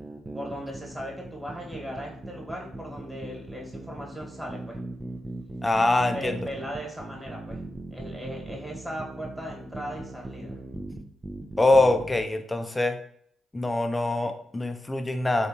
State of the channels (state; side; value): normal; both; correlation 0.91